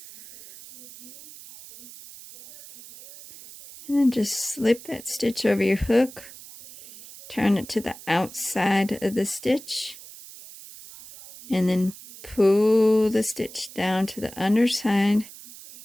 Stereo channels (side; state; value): right; noise; hiss, 17 dB below the sound